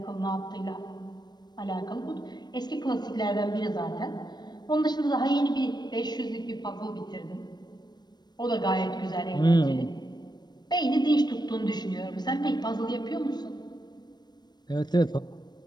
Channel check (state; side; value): late; right; 0.20 ms